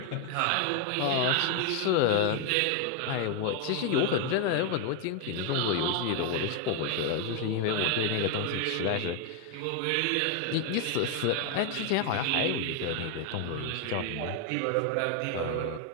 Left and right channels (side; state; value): both; different; correlation 0.01